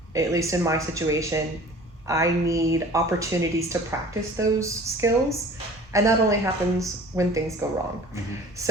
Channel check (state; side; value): normal; both; correlation 0.46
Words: at least in my situation, I need opportunities to practice those skills. And that only happens when things go wrong.